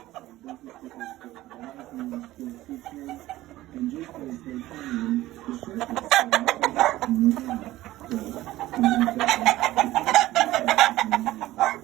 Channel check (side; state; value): left; quieter; 16.2 dB